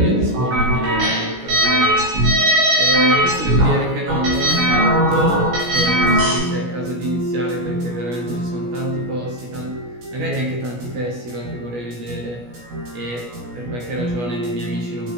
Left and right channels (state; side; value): late; left; 17 ms